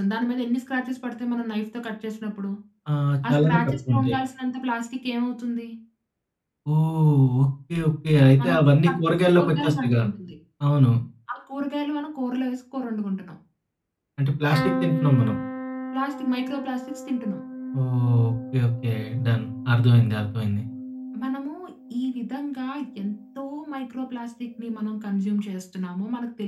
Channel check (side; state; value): both; identical; correlation 1.00